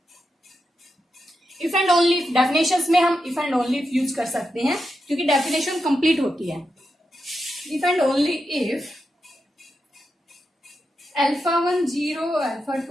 and only, definitions में हम if and only यूज कर सकते हैं क्योंकि डेफिनेशन कंप्लीट होती है। if and only if alpha 1 0, alpha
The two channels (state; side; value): normal; both; correlation 0.87